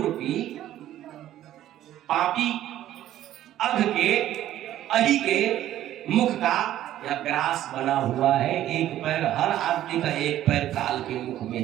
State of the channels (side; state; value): left; quieter; 12.8 dB